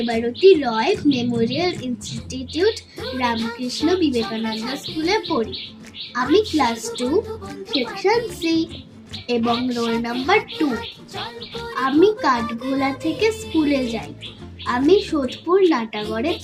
রয় মেমোরিয়াল ইনস্টিটিউট রামকৃষ্ণ বিবেকানন্দ স্কুলে পড়ি। আমি ক্লাস 2 সেকশন সি এবং রোল নাম্বার 2। আমি কাঠগোলা থেকে স্কুলে যাই। আমি সোদপুর নাটাগড়ে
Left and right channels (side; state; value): both; identical; correlation 1.00